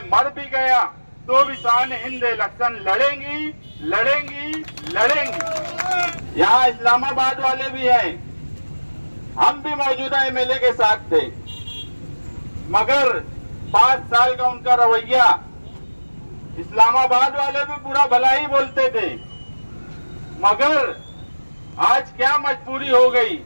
मर भी गया, तो भी शान हिंद इलेक्शन लड़ेंगी लड़ेंगी लड़ेंगी। यहाँ इस्लामाबाद वाले भी हैं, हम भी मौजूदा एमएलए के साथ थे, मगर 5 साल का उनका रवैया, इस्लामाबाद वाले भी पूरा भला ही बोलते थे, मगर आज क्या मजबूरी हो गई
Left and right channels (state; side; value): inverted; both; correlation -1.00